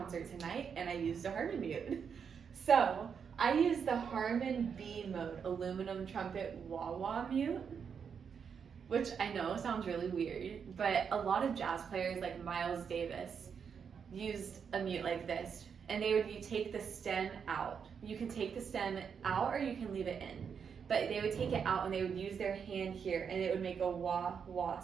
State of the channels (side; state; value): left; quieter; 6.8 dB